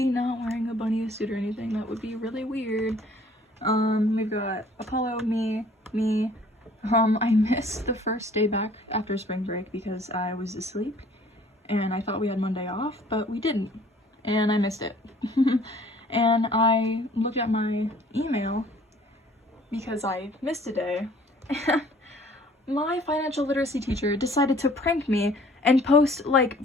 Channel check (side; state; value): both; normal; correlation 0.54